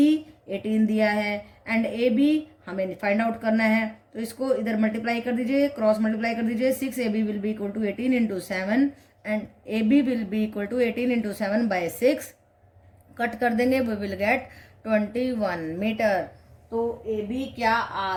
18 दिया है एंड AB हमें फाइंड आउट करना है. तो इसको इधर मल्टीप्लाई कर दीजिए, क्रॉस मल्टीप्लाई कर दीजिए. 6AB will be equal to 18 into 7 and AB will be equal to 18 into 7/6. Cut कर देंगे, वी विल गेट 21 मीटर. तो AB क्या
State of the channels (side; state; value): both; identical; correlation 1.00